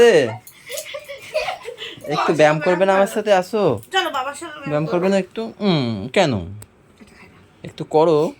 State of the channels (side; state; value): both; identical; correlation 1.00